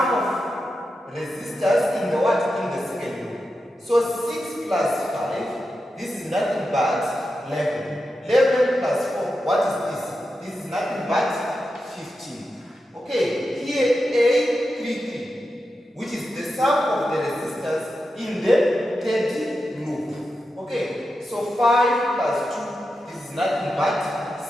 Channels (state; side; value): normal; both; correlation 0.89